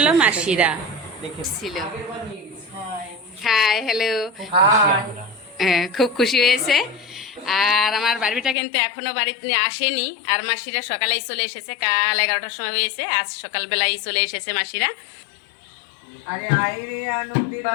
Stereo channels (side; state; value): right; drops out; at 8.6 s